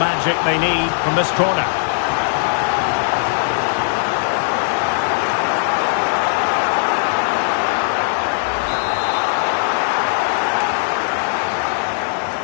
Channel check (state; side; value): silent; right; 67 dB below the other